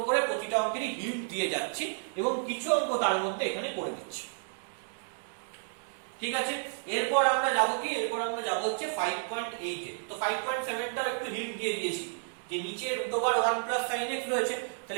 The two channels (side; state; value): left; silent; digital silence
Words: করে প্রতিটা অঙ্কেরই হিন্ট দিয়ে যাচ্ছি এবং কিছু অঙ্ক তার মধ্যে এখানে করে দিচ্ছি। ঠিক আছে, এরপর আমরা যাবো কি, এরপর আমরা যাবো হচ্ছে 5.8 এ। তো 5.7 টাও একটু হিন্ট দিয়ে দিয়েছি, যে নিচে √1 + sin x রয়েছে,